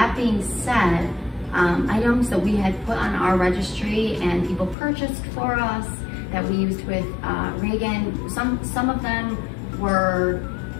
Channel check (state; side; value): drops out; right; at 4.8 s